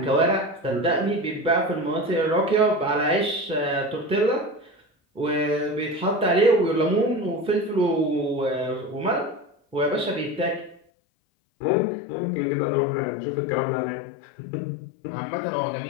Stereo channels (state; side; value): drops out; right; at 10.8 s